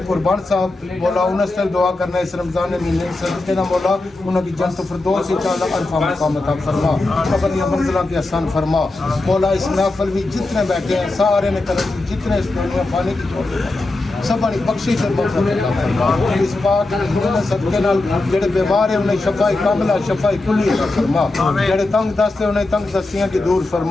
قربان صاحب مولا انہاں سے دعا کرنا اس رمضان مہینے صدقے نہ مولا انہاں کی جنت فردوس ہی چال عرفہ مقام عطا فرما قبریاں منزلہ بے آسان فرما مولا اس محفل بھی جتنے بیٹھے ہیں سارے نے کرم جتنے اس دنیا فانی کی چھوڑ سب بڑی بخشش اور مغفرت عطا فرما اس پاک انہوں صدقے نال جڑے بیمار ہیں انہیں شفاء کاملہ شفاء کلی عطا فرما جڑے تنگ دست ہیں انہیں تنگ دستیاں کی دور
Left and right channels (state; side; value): quieter; right; 3.0 dB